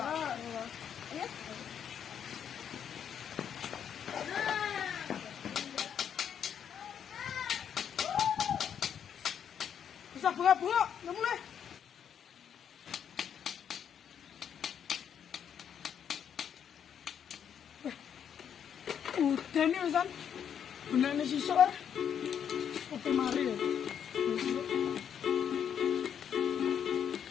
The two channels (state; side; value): quieter; right; 8.4 dB